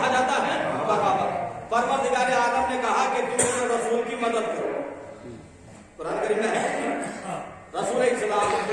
جاتا ہے؟ بغاوت. پروردگار عالم نے کہا کہ تم میرے رسول کی مدد کرو. قرآن کریم میں ہے رسول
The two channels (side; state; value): both; identical; correlation 1.00